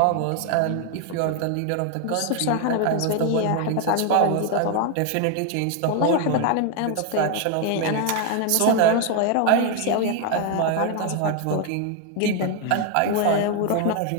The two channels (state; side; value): different; both; correlation 0.01